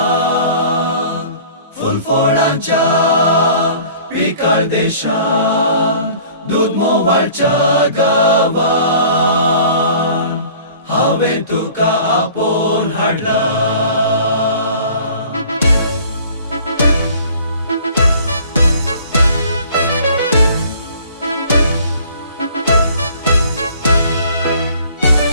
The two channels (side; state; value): both; inverted; correlation -0.50